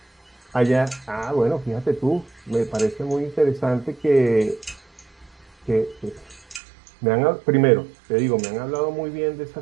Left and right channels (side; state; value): left; drops out; at 6.6 s